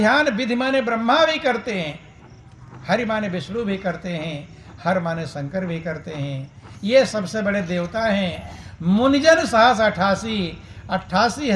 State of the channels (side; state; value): both; identical; correlation 1.00